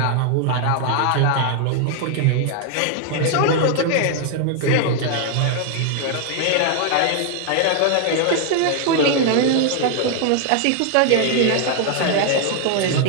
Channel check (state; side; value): different; both; correlation 0.00